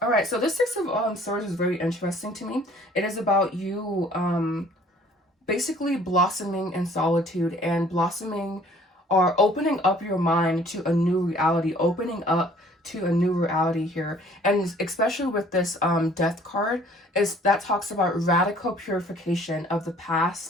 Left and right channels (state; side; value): normal; both; correlation 0.55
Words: All right, so this 6 of Swords is very interesting to me. It is about you basically blossoming in solitude and blossoming or opening up your mind to a new reality, opening up to a new reality here. And especially with this Death card, is that talks about radical purification of the